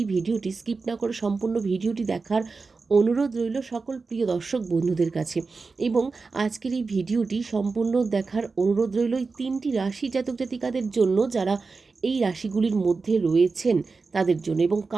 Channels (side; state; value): left; quieter; 4.3 dB